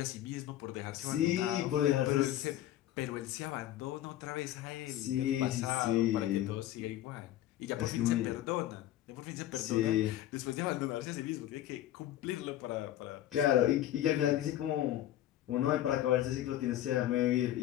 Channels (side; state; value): right; quieter; 13.0 dB